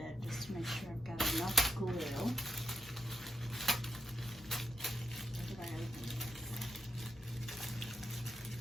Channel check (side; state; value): both; normal; correlation 0.82